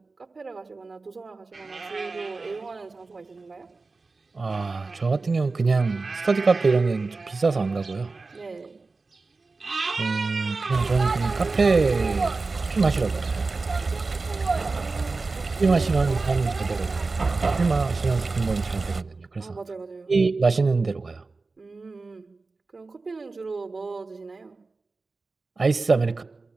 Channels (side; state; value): left; quieter; 3.8 dB